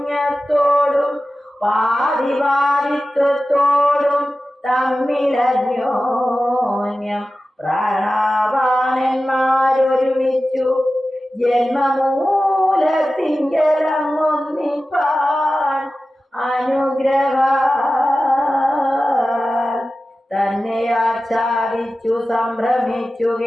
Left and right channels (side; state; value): both; normal; correlation 0.94